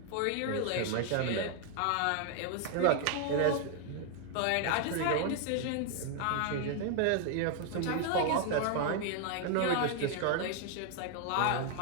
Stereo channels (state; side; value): different; both; correlation 0.00